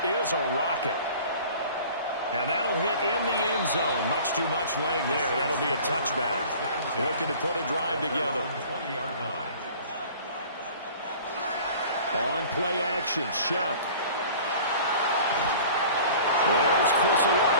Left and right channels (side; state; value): both; inverted; correlation -0.45